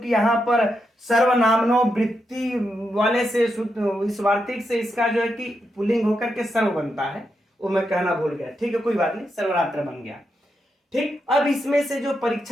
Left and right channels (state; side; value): normal; both; correlation 0.84